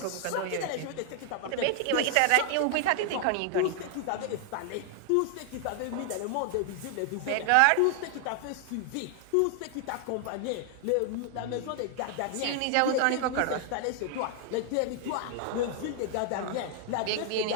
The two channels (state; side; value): different; both; correlation 0.00